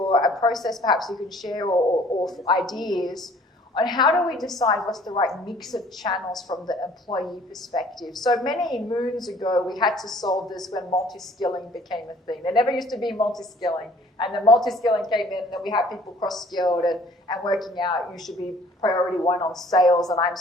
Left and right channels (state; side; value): normal; both; correlation 0.55